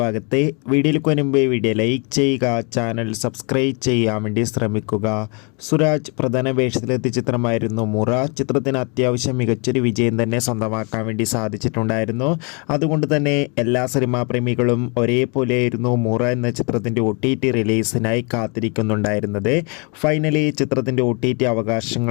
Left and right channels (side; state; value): right; quieter; 34.2 dB